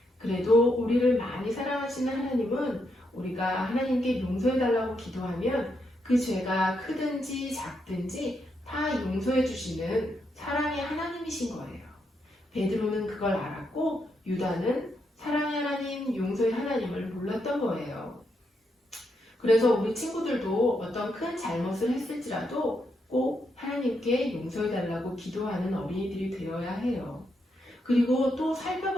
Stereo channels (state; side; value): normal; both; correlation 0.80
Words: 그래도 우리를 많이 사랑하시는 하나님은 우리가 하나님께 용서해달라고 기도하면 그 죄가 크든지 작든지 다 용서해 주시는 사랑의 하나님이신 거예요. 베드로는 그걸 알았고 유다는 사랑의 하나님, 용서의 하나님을 몰랐던 거예요. 그래서 우리 친구들도 어떤 큰 잘못을 했을지라도 꼭 하나님께 용서해달라고 기도하는 어린이들이 되어야 해요. 그리고 또